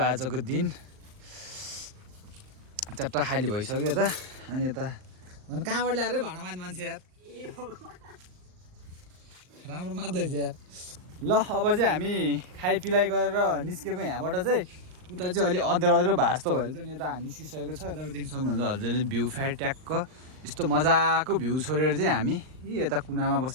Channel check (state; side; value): late; left; 39 ms